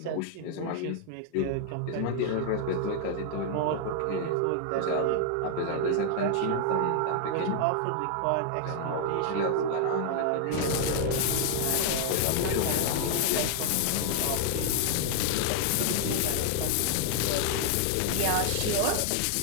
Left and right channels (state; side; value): different; both; correlation 0.00